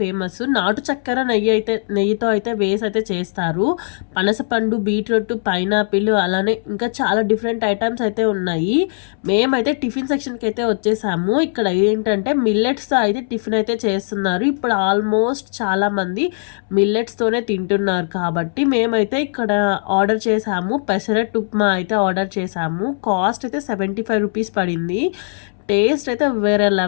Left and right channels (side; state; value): right; silent; 66 dB below the other